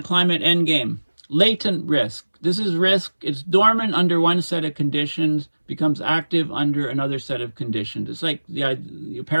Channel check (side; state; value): both; inverted; correlation -1.00